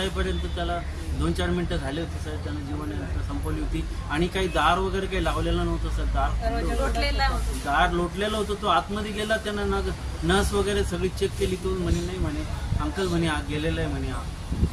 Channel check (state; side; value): identical; both; correlation 1.00